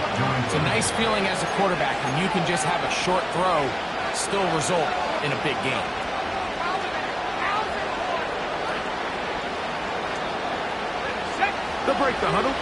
It's a nice feeling as a quarterback when you can just have a short throw still result in a big game. They'll break the huddle.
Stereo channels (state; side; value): identical; both; correlation 1.00